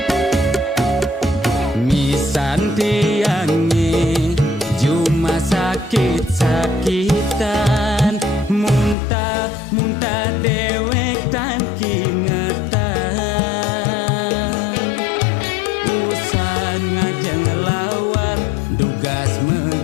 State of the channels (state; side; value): drops out; right; at 9.0 s